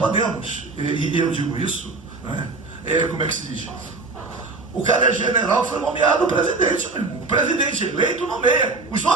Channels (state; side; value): quieter; left; 3.7 dB